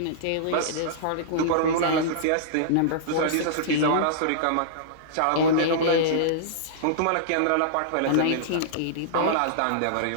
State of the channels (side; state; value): both; different; correlation -0.03